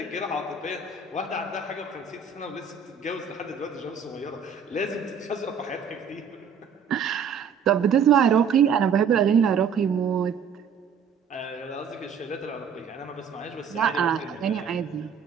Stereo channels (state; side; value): quieter; left; 6.4 dB